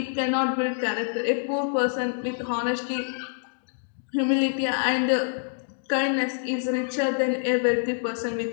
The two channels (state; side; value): silent; right; digital silence